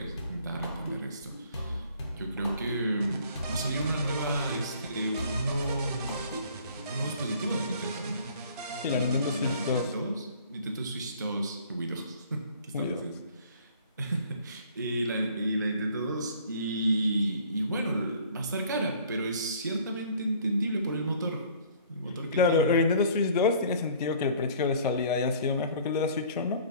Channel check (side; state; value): both; inverted; correlation -0.53